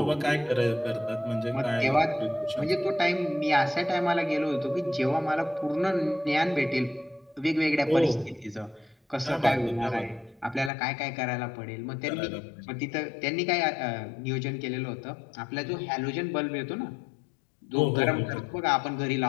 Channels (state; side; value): drops out; right; at 10.7 s